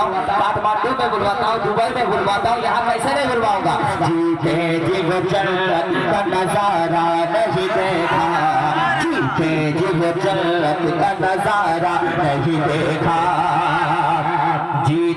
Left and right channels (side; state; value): both; identical; correlation 1.00